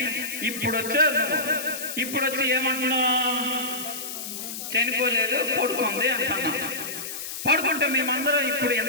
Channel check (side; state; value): left; noise; hiss, 7 dB below the sound